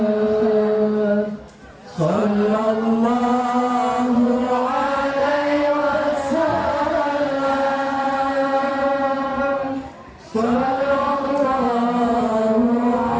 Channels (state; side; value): identical; both; correlation 1.00